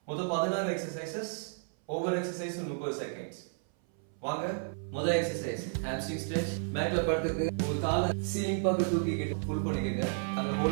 மொத்தம் 16 எக்ஸசைசஸ், ஒவ்வொரு எக்ஸசைஸும் 30 செகண்ட்ஸ். வாங்க, முதல் எக்ஸசைஸ் ஹாம்ஸ்ட்ரிங் ஸ்ட்ரெச். மேட்ல படுத்துக்கு உங்க காலை சீலிங் பக்கம் தூக்கிக்கிட்டு புல் பண்ணிக்கங்க. அங்க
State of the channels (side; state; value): left; silent; 56 dB below the other